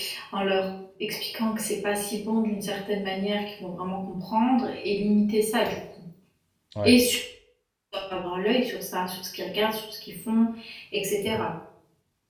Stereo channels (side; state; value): both; identical; correlation 1.00